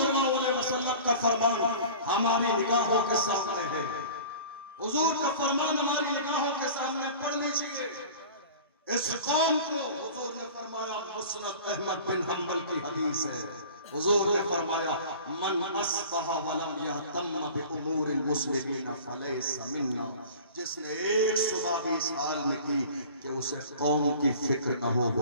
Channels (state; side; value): inverted; both; correlation -0.42